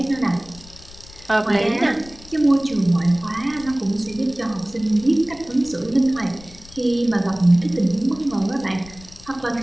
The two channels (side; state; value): left; noise; rumble, 20 dB below the sound